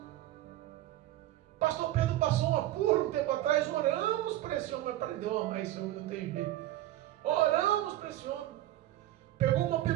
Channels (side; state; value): left; quieter; 14.6 dB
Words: Pastor Pedro passou um apuro um tempo atrás, oramos para esse homem, mas aprendeu a amar esse homem, não tem jeito. Oramos para esse homem. Pegou uma